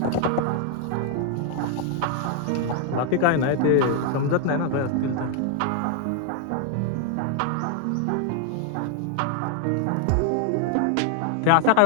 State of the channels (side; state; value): both; different; correlation 0.00